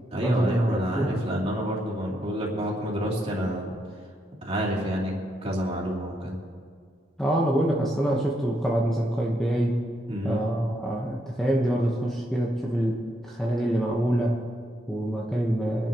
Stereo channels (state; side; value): normal; both; correlation 0.78